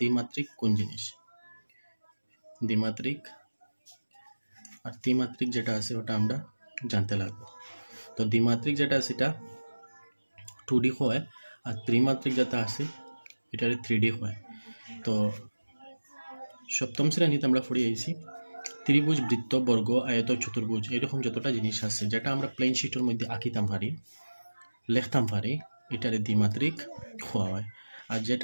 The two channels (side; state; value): both; inverted; correlation -1.00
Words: কোন জিনিস। দ্বিমাত্রিক আর ত্রিমাত্রিক যেটা আছে ওটা আমরা জানতে লাগবো। তো দ্বিমাত্রিক যেটা আছে এটা 2D হয় আর ত্রিমাত্রিক যেটা আছে এটা 3D হয়। তো সপ্তম শ্রেণীতে আমরা পড়ে আইছি ত্রিভুজ, বৃত্ত, বর্গ, আয়ত, চতুর্ভুজ এরকম যতটা জিনিস আছে যেটা আমরা প্লেন শিটের মধ্যে আঁকিতাম পারি, লিখতাম পারি, এটারে দ্বিমাত্রিক হওয়া হয়। আর